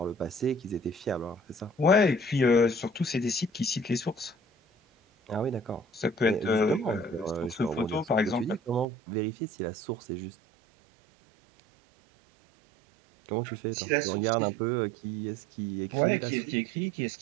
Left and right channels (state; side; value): drops out; left; at 8.8 s